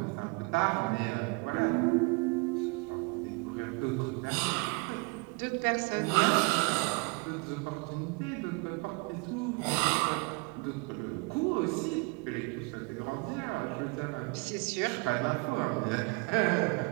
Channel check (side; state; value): left; quieter; 29.6 dB